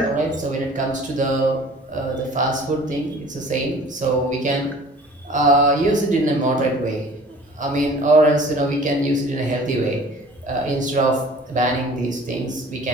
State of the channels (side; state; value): both; normal; correlation 0.47